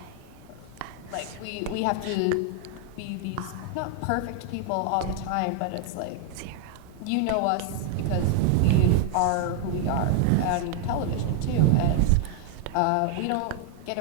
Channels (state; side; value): different; both; correlation 0.00